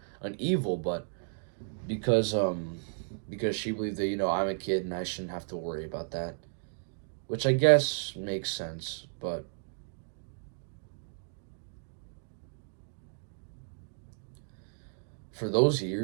evil, but because because she believed that, I'm a kid and I shouldn't have to worry about that, which I guess makes sense. But for those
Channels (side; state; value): left; silent; digital silence